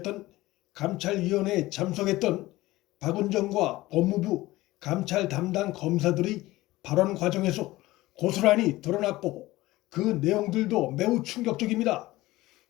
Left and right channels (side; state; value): right; quieter; 18.1 dB